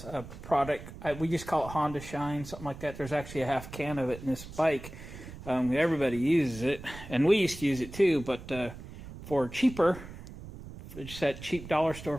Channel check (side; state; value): right; noise; rumble, 13 dB below the sound